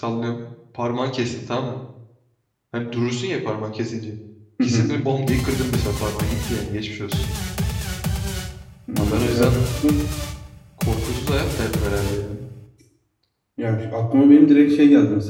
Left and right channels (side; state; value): both; identical; correlation 1.00